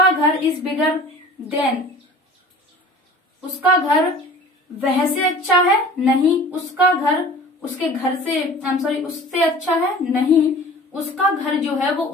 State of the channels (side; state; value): both; normal; correlation 0.43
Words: घर, इज बिगर देन, उसका घर वह से अच्छा है, नहीं, उसका घर उसके घर से, आई एम सॉरी, उससे अच्छा है, नहीं, उसका घर जो है वो